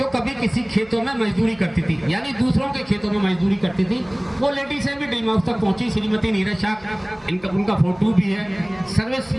कभी किसी खेतों में मजदूरी करती थी, यानी दूसरों के खेतों में मजदूरी करती थी। वो लेडीजें भी ड्रीम हाउस तक पहुंची। श्रीमती नीरज शाह, उनका फोटो भी है।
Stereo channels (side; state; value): right; noise; hum, 26 dB below the sound